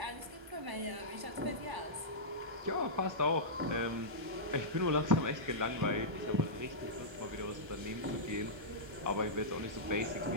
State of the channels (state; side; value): late; left; 1.3 ms